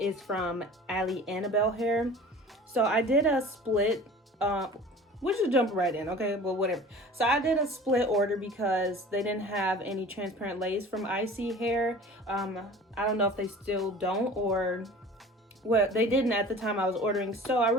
from Ali Annabelle hair. So I did a split, we should jump right in, okay? But whatever. So I did a split order because they didn't have any transparent lace from ISEE hair. I don't know if they still don't, or well, they didn't at the time I was ordering. So I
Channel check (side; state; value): both; normal; correlation 0.42